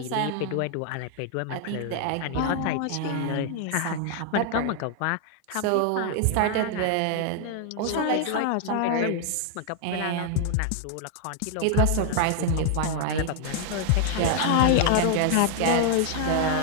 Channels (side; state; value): both; different; correlation 0.00